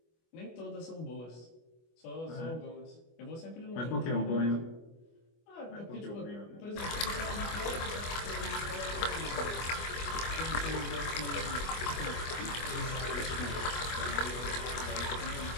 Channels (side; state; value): right; late; 25 ms